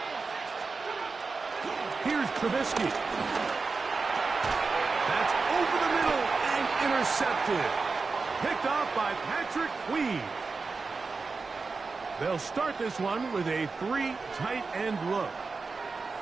Here's Trubisky. That's over the middle and intercepted. Picked off by Patrick Queen. They'll start this one with a 3 tight end look.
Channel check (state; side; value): quieter; left; 4.3 dB